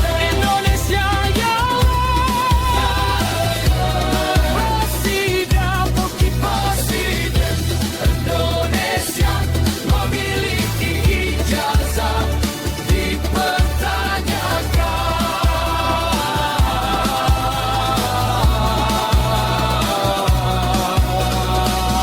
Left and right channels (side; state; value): both; identical; correlation 1.00